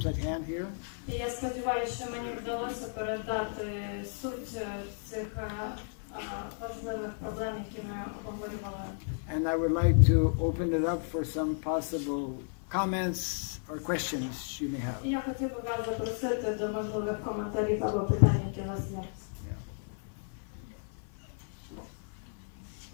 at hand here. І я сподіваюся, що мені вдалося передати суть цих важливих проблем, які ми обговорювали. And I would like to open it up for some possible comments or questions you may have. І я хотів би вас запросити до можливих коментарів або питань, які у вас є.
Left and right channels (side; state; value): right; silent; 56 dB below the other